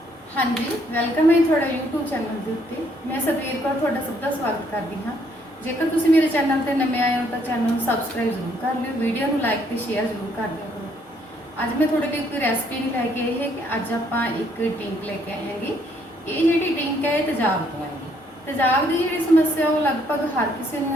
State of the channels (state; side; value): normal; both; correlation 0.68